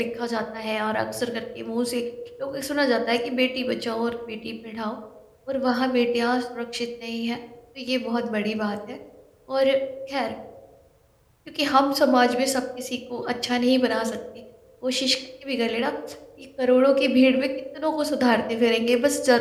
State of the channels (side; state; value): both; identical; correlation 1.00